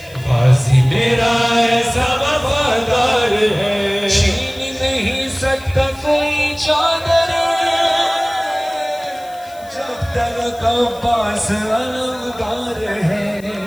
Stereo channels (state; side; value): noise; left; hiss, 23 dB below the sound